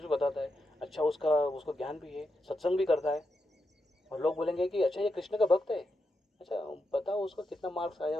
भी बताता है, अच्छा उसका उसको ज्ञान भी है, सत्संग भी करता है, और लोग बोलेंगे कि अच्छा ये कृष्ण का भक्त है। अच्छा बताओ उसको कितना मार्क्स आया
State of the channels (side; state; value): both; normal; correlation 0.86